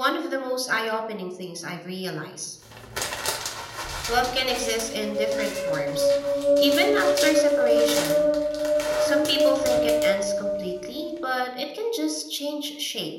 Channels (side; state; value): both; identical; correlation 1.00